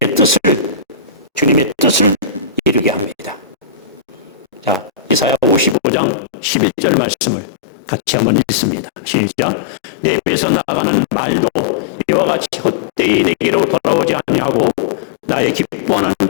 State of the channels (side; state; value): right; drops out; at 5.8 s